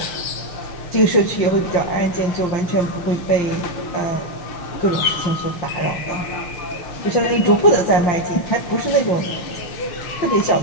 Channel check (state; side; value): late; right; 5.8 ms